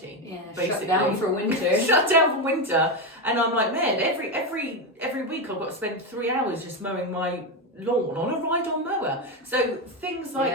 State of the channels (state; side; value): normal; both; correlation 0.11